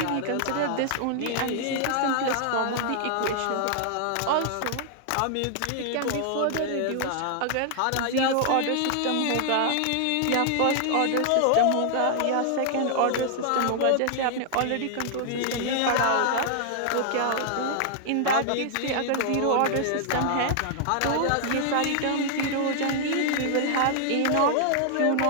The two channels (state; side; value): different; both; correlation 0.00